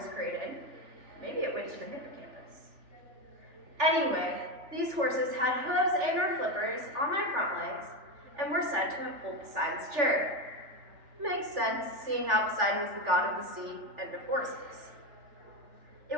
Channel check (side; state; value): left; late; 3.4 ms